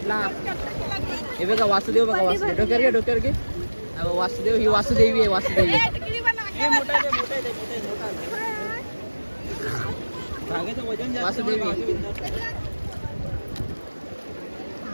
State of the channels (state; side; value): inverted; both; correlation -1.00